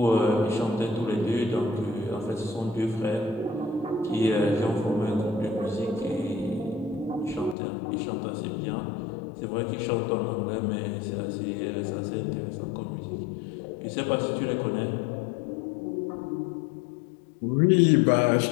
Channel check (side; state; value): right; drops out; at 7.6 s